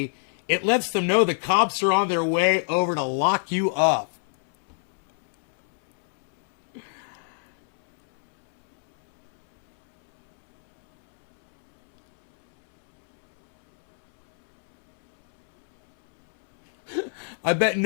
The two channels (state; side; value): silent; right; 63 dB below the other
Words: it lets them know the cops are on their way over to lock you up. I bet